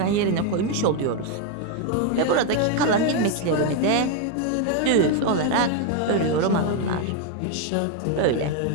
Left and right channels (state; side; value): different; both; correlation 0.01